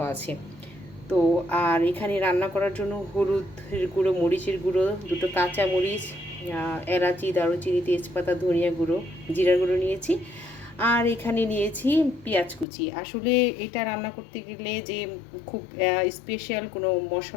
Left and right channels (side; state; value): right; drops out; at 12.7 s